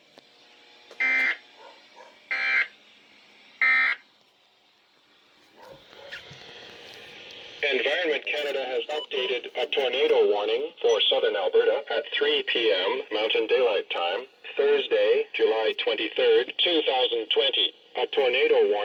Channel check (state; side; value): identical; both; correlation 1.00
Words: Environment Canada has updated a tornado warning for southern Alberta at 3 p.m. Mountain Daylight Time, Thursday, July 23rd, 2020. A tornado